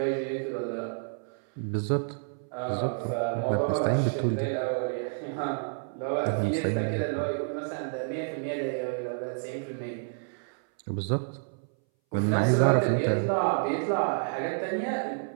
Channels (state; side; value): silent; left; 58 dB below the other